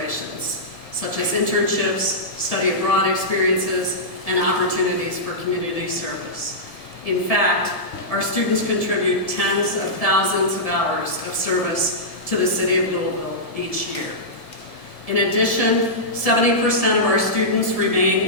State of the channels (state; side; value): late; right; 1.7 ms